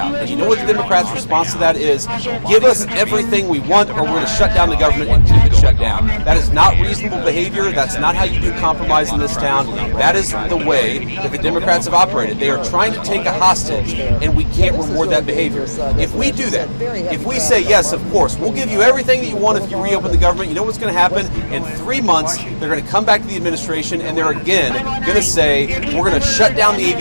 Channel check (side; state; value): both; inverted; correlation -1.00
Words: And you know what the Democrats' response to that is? Give us everything we want, or we're going to shut down the government and keep it shut down. That is not reasonable behavior. That's not how you do compromise in this town. That is the way that the Democrats have operated. They are trying to take a hostage, and we can't reward that behavior. If we do that, if we say, yes, of course, we'll give you everything that you want if you reopen the government, you know what's going to happen? In 3 months, they're going to come back to the administration, and they're again going to say, we're going to shut down the